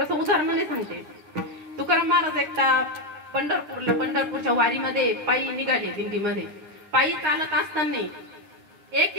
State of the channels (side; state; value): left; late; 9.7 ms